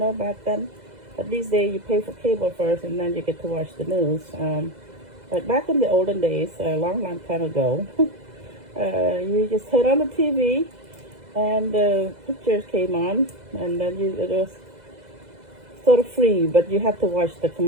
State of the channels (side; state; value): left; late; 2.0 ms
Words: back then. But these days you pay for cable first and then you get to watch the news. But back in the olden days, a long time ago, you just turn on the TV and the pictures came on, and then it was sort of free, but you have to watch the